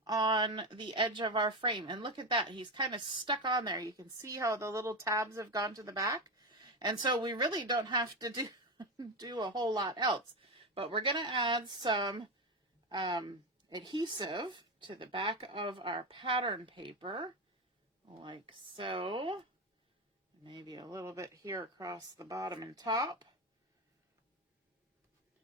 on the edge of our frame. And look at that. He's kind of stuck on there. You can see how the little tabs have gone to the back. And so we really don't have to do a whole lot else. But we're going to add some adhesive to the back of our pattern paper, like so. Maybe a little bit here across the bottom and top.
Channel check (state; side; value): normal; both; correlation 0.15